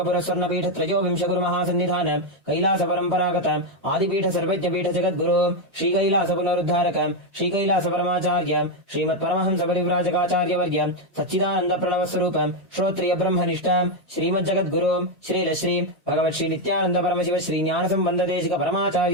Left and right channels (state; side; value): normal; both; correlation 0.04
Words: स्वर्ण पीठ त्रयोविंश गुरु महासन्निधान कैलास परंपरागत आदिपीठ सर्वज्ञ पीठ जगत गुरु श्री कैलास पुनरुद्धारक श्री कैलास परमाचार्य श्रीमत् परमहंस परिव्राजकाचार्य वर्य सच्चिदानंद प्रणव स्वरूप श्रोत्रिय ब्रह्मनिष्ठ श्री जगत गुरु श्री श्री भगवत् श्री नित्यानंद परमशिव श्री ज्ञान संबंध देशिक